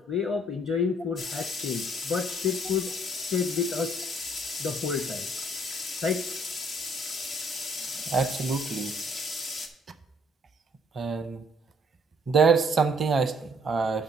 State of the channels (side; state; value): both; normal; correlation 0.64